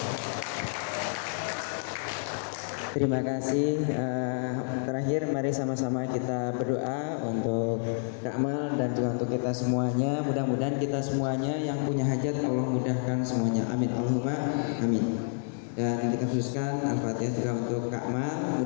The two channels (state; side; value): silent; right; digital silence